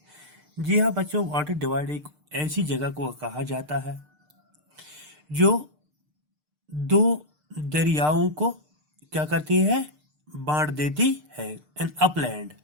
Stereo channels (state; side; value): late; left; 6.6 ms